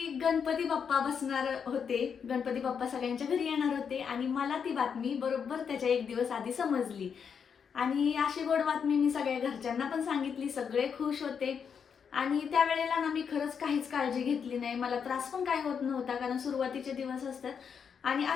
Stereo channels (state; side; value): quieter; right; 6.8 dB